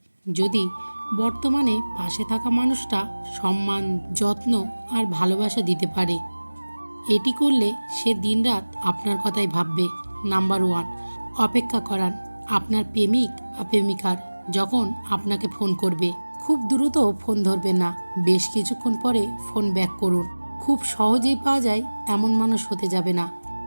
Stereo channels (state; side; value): inverted; both; correlation -1.00